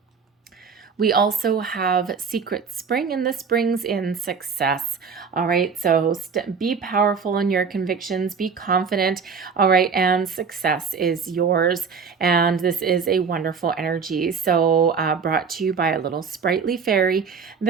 We also have Secret Spring, and this brings in success. All right, so be powerful in your convictions, be confident. All right, and success is yours. And this is a wonderful energy. So brought to you by a little sprightly fairy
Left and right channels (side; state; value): left; quieter; 5.8 dB